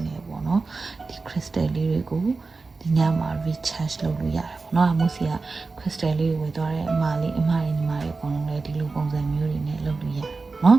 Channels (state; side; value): quieter; left; 4.0 dB